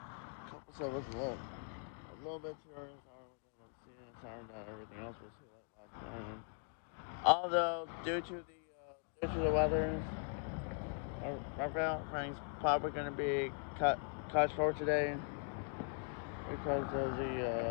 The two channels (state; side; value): silent; right; 51 dB below the other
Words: couple of us a little bit too early. Sorry that everything else was too late last night. Although due to the weather, our train's probably going to be cut short today because of